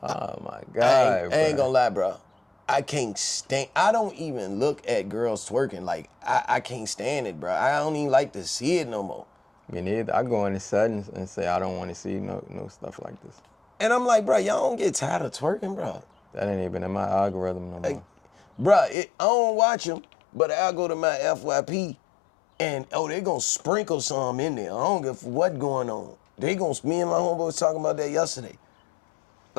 Oh my God. I ain't gonna lie, bruh. I can't stand, I don't even look at girls twerking. Like, I can't stand it, bruh. I don't even like to see it no more. Me neither. I go in the settings and say I don't want to see no stuff like this. And I'm like, bruh, y'all don't get tired of twerking, bruh. That ain't even in my algorithm no more. Like, bruh, I don't watch them, but I'll go to my FYP and, they gonna sprinkle some in there. I don't give what going on. Me and my homeboy was talking about that yesterday.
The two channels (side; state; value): right; drops out; at 18.9 s